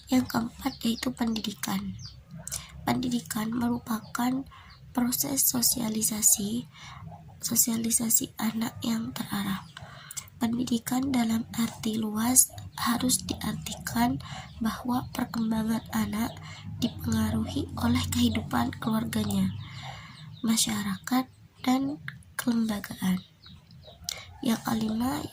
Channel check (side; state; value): both; identical; correlation 1.00